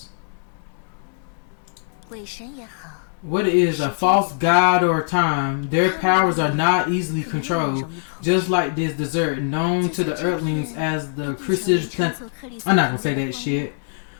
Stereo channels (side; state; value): right; silent; digital silence